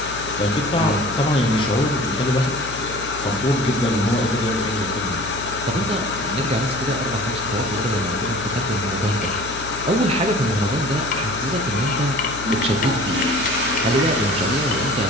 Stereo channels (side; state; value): left; noise; hum, 13 dB below the sound